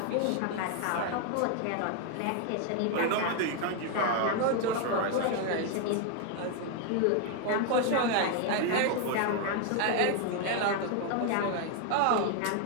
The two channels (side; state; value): both; different; correlation 0.01